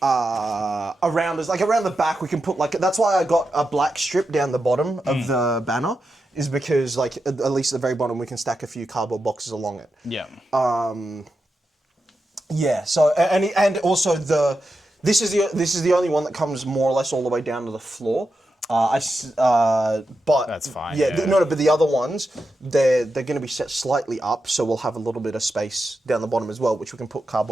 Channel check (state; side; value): normal; both; correlation 0.88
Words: Around us, like around the back, we can put like, that's why I got a black strip down the bottom of the banner, is because like, at least at the very bottom, we can stack a few cardboard boxes along it. Yeah. Yeah, so, and also this is the only one that comes more or less all the way down to the floor. But That's fine. Yeah, but the other ones, they're going to be set slightly up, so we'll have a little bit of space down the bottom as well, which we can put